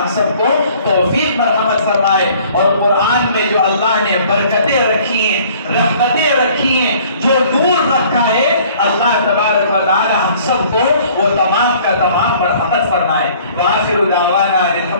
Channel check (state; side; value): inverted; both; correlation -0.55